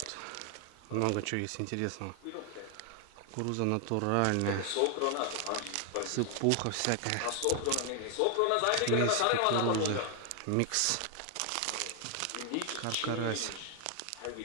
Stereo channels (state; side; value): different; both; correlation 0.00